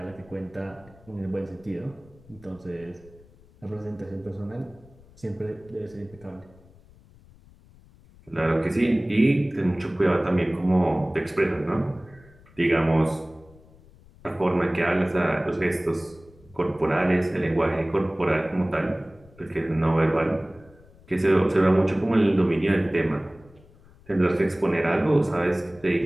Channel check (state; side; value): noise; left; rumble, 26 dB below the sound